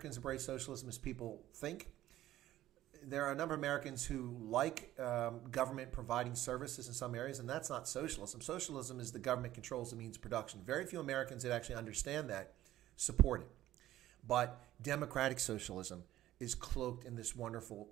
embrace socialism as people think. There are a number of Americans who like government providing services in some areas, and that's not socialism. Socialism is the government controls the means of production. Very few Americans that actually understand that support it. But democratic socialism is cloaked in this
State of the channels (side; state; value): left; quieter; 14.1 dB